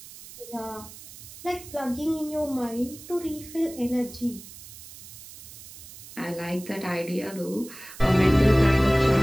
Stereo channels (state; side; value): noise; right; hiss, 16 dB below the sound